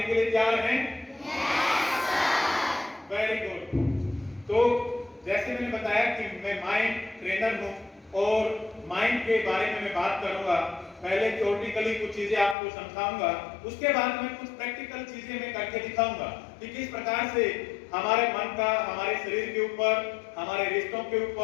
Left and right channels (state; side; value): drops out; right; at 12.6 s